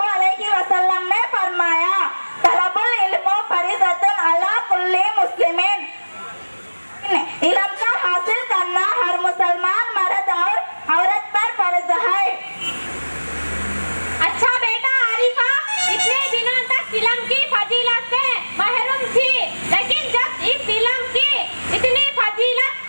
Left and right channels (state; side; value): inverted; both; correlation -1.00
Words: अलैहि वसल्लम ने फरमाया तलबुल इल्म फरीज़तुन अला कुल्ली मुस्लिमीन। इल्म का हासिल करना हर मुसलमान मर्द और औरत पर फर्ज है। अच्छा बेटा आरिफा, इतने दिनों तक इल्म की फजीलत से महरूम थी, लेकिन जब इस इल्म की इतनी फजीलत